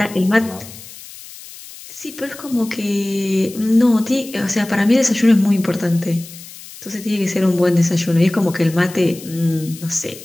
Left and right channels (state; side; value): noise; left; hiss, 17 dB below the sound